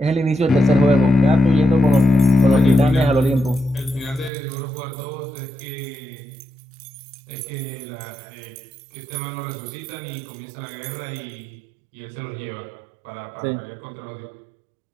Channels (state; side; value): drops out; left; at 4.3 s